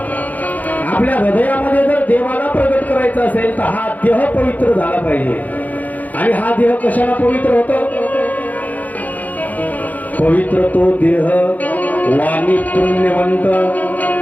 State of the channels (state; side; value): late; right; 0.079 ms